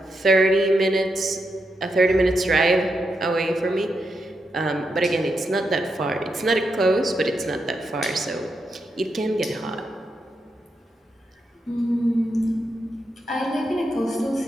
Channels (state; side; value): normal; both; correlation 0.84